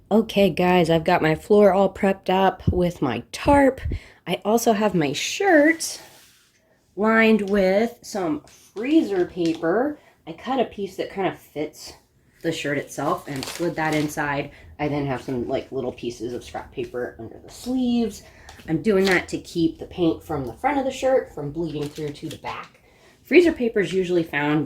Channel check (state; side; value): identical; both; correlation 1.00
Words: Okay guys, I've got my floor all prepped up with my tarp. I also have my shirt lined with some freezer paper. I cut a piece that kind of fits the shirt itself and slid that inside. I then have some like little pieces of scrap paper under the sleeves. I'm doing that to keep the paint from the front of the shirt from bleeding through to the back. Freezer paper is usually